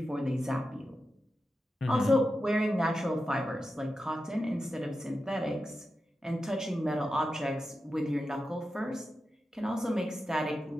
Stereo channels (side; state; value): both; normal; correlation 0.90